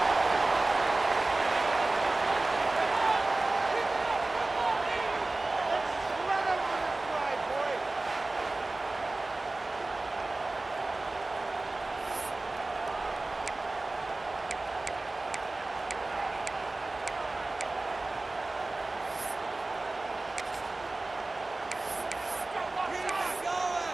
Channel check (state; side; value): quieter; left; 3.1 dB